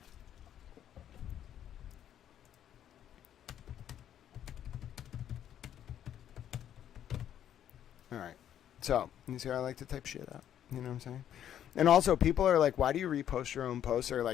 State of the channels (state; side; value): quieter; right; 10.3 dB